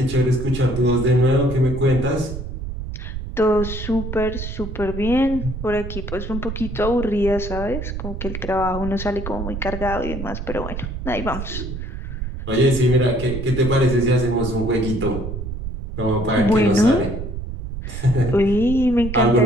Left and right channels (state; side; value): noise; right; rumble, 6 dB below the sound